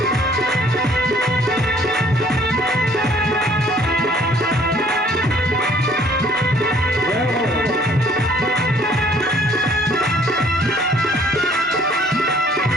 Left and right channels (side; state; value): both; normal; correlation 0.59